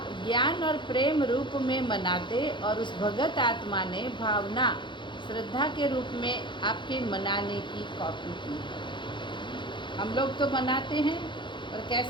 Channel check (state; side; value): late; right; 0.23 ms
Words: ज्ञान और प्रेम रूप में मनाते और उस भगत आत्मा ने भावना श्रद्धा के रूप में आपके मनाने की कॉपी की है। हम लोग तो मनाते हैं, और